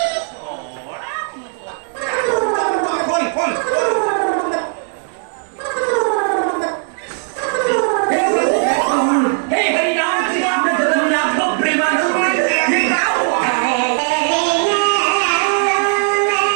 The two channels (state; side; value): silent; left; 56 dB below the other